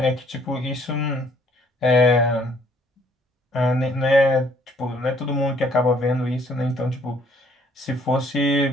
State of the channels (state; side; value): normal; both; correlation 0.62